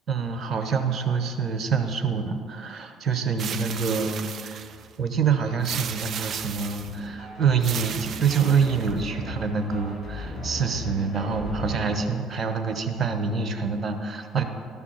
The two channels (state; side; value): quieter; left; 5.3 dB